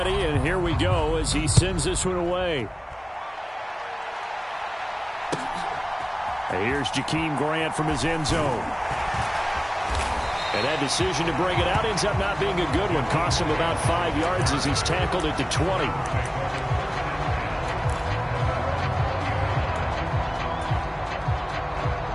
and here we go as he sends this one away. Here's Jakeem Grant from his end zone. And that decision to bring it out ends up not being a good one. Cost him about 5 yards as he's tackled at the 20.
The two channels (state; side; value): identical; both; correlation 1.00